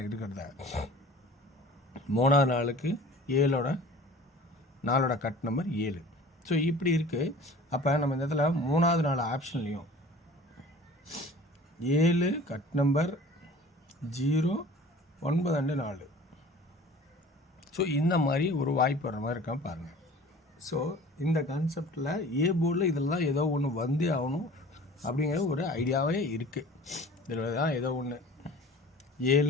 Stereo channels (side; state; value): both; normal; correlation 0.44